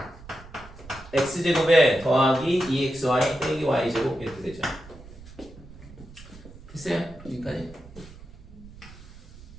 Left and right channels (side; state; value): right; noise; rumble, 18 dB below the sound